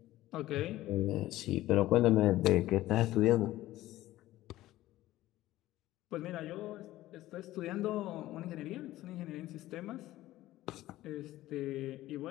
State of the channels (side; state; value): right; quieter; 15.7 dB